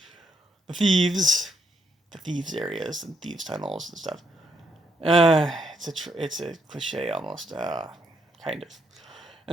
The thieves areas and thieves tunnels and stuff. It's a cliche almost, kind of.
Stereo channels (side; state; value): both; normal; correlation 0.75